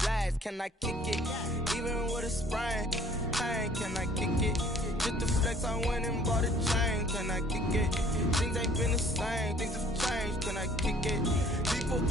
Can I kick it? Even with a sprain. Pain, can I kick it? Just the flex, I went and bought a chain. Can I kick it? Things ain't been the same. Things have changed. Can I kick it? People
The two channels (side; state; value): both; normal; correlation 0.55